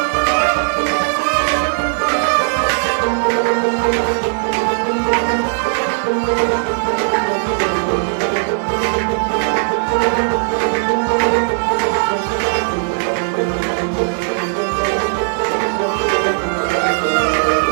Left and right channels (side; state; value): left; silent; digital silence